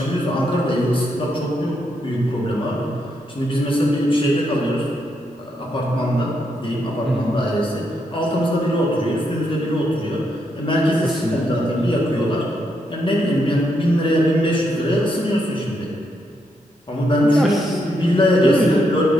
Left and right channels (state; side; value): normal; both; correlation 0.79